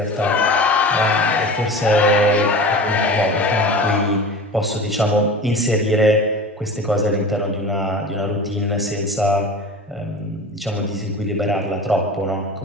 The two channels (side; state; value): both; normal; correlation 0.34